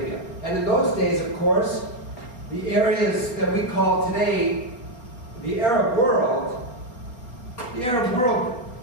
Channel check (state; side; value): late; right; 4.3 ms